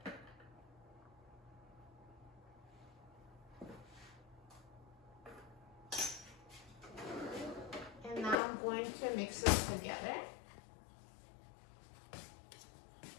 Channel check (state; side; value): drops out; right; at 8.3 s